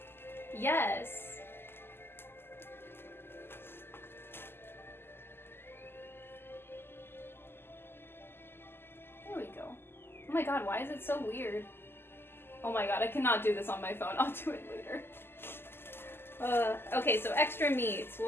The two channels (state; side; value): late; right; 0.11 ms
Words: Yes! There we go. Oh my god, why is it so weird? Oh my god, I cannot do this on my phone. I'll do it later. Okay, so extra meats.